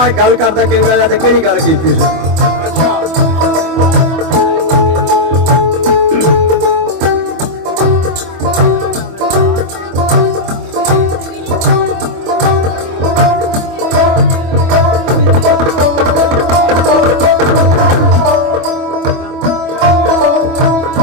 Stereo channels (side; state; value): left; late; 24 ms